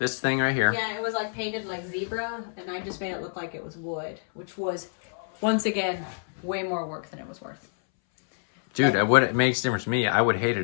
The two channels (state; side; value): silent; right; 60 dB below the other